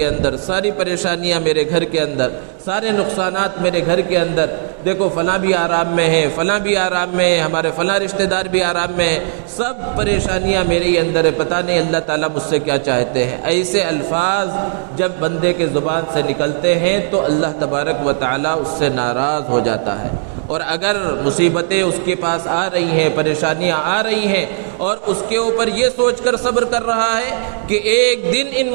اندر، ساری پریشانیاں میرے گھر کے اندر، سارے نقصانات میرے گھر کے اندر، دیکھو فلاں بھی آرام میں ہے، فلاں بھی آرام میں ہے، ہمارے فلاں رشتہ دار بھی آرام میں ہے، سب پریشانیاں میرے ہی اندر ہے، پتہ نہیں اللہ تعالیٰ مجھ سے کیا چاہتے ہیں۔ ایسے الفاظ جب بندے کے زبان سے نکلتے ہیں تو اللہ تبارک و تعالیٰ اس سے ناراض ہو جاتا ہے۔ اور اگر مصیبتیں اس کے پاس آ رہی ہیں، پریشانیاں آ رہی ہیں اور اس کے اوپر یہ سوچ کر صبر کر رہا ہے کہ ایک دن ان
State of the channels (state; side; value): silent; left; digital silence